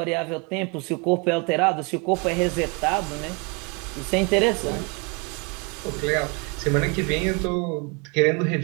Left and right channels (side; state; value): left; quieter; 30.8 dB